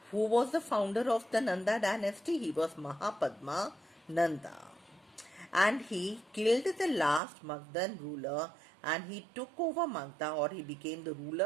who was the founder of the Nanda dynasty? He was Mahapadma Nanda. And he killed the last Magadhan ruler and he took over Magadha, or he became the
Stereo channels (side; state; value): left; drops out; at 7.2 s